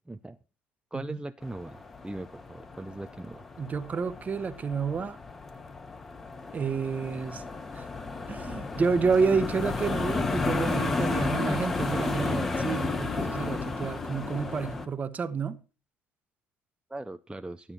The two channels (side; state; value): both; normal; correlation 0.81